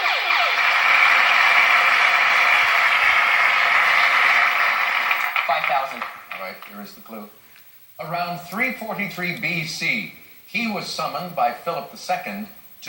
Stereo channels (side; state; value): both; identical; correlation 1.00